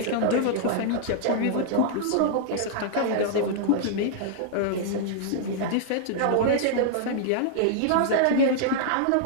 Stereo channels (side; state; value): both; different; correlation -0.01